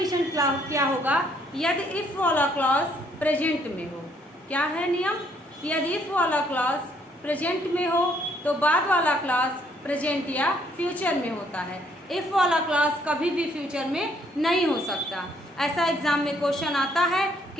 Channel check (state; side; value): normal; both; correlation 0.67